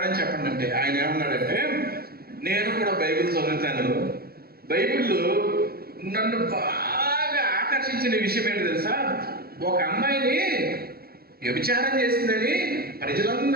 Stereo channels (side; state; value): left; late; 0.45 ms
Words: చెప్పండి అంటే ఆయన ఏమన్నాడంటే, నేను కూడా బైబిల్ చదువుతాను, బైబిల్లో నన్ను బాగా ఆకర్షించిన విషయం ఏంటి తెలుసా? ఒక అమ్మాయిని వ్యభిచారం చేసిందని